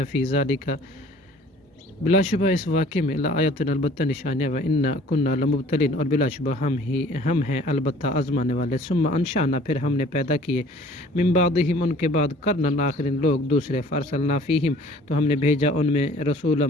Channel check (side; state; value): both; normal; correlation 0.51